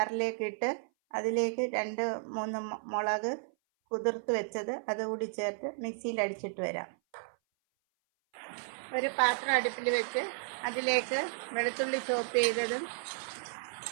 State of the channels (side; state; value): left; silent; 56 dB below the other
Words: ഇട്ട് അതിലേക്ക് 2-3 മുളക് കുതിർത്ത് വെച്ചത് അതുകൂടി ചേർത്ത് മിക്സിയിൽ അടിച്ചിട്ട് വരാം. ഒരു പാത്രം അടുപ്പിൽ വെച്ച് അതിലേക്ക് വെളുത്തുള്ളി ചോപ്പ് ചെയ്തതും